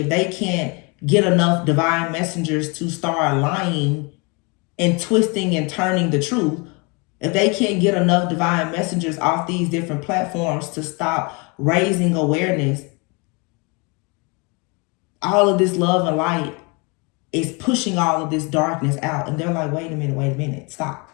if they can't get enough divine messengers to start lying and twisting and turning the truth, if they can't get enough divine messengers off these different platforms to stop raising awareness, all of this love and light is pushing all of this darkness out. And they're like, wait a minute, stop.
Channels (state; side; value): quieter; right; 30.4 dB